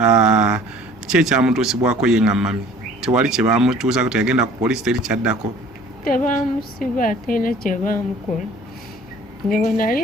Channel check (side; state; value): both; normal; correlation 0.50